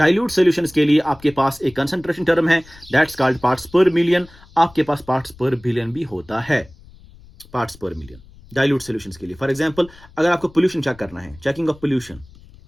solutions के लिए आपके पास एक concentration term है, that's called parts per million. आपके पास parts per billion भी होता है, parts per million dilute solutions के लिए. फॉर एग्जांपल, अगर आपको पोल्यूशन चेक करना है, checking of pollution,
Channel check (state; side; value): noise; left; rumble, 23 dB below the sound